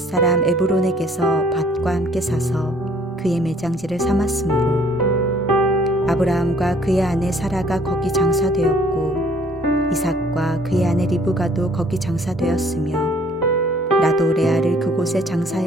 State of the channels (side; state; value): both; normal; correlation 0.59